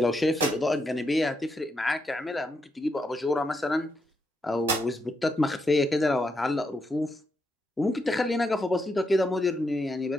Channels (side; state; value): both; normal; correlation 0.81